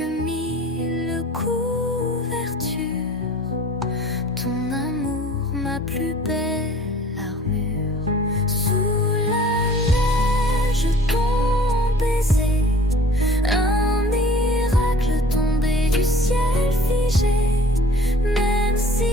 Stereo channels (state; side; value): normal; both; correlation 0.50